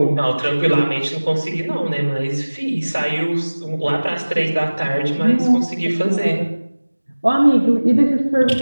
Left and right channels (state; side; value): inverted; both; correlation -1.00